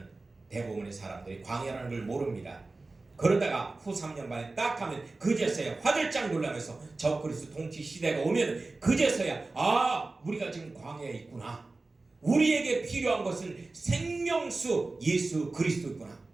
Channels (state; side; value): quieter; left; 3.4 dB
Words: 대부분의 사람들이 광야라는 걸 모릅니다. 그러다가 후 3년 반에 딱 하면 그제서야 화들짝 놀라면서 적그리스도 통치 시대가 오면 그제서야 우리가 지금 광야에 있구나. 우리에게 필요한 것은 생명수 예수 그리스도구나.